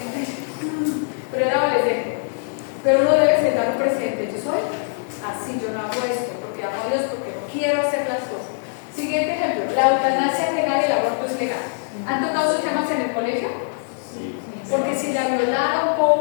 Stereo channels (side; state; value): right; silent; 64 dB below the other